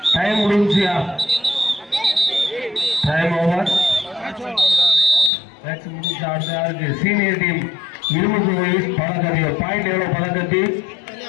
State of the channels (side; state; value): right; drops out; at 5.3 s